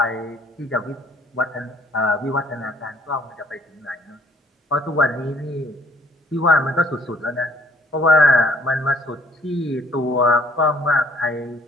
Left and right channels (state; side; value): normal; both; correlation 0.61